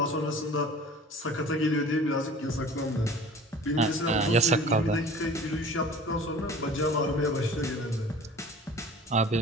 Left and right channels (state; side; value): normal; both; correlation 0.44